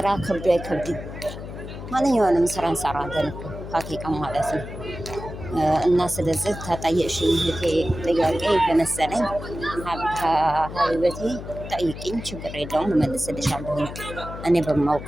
ከብዶ አይከብድም። ማንኛውንም ስራ እንሰራለን ሀቂቃ ማለት ነው። እና ስለዚህ ተጠየቅሽኝ እህቴ ጥያቄ በመሰለኝ ሀቢበቴ ጠይቅኝ፣ ችግር የለውም እመልስልሻለሁ። እኔ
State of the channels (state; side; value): noise; left; hum, 10 dB below the sound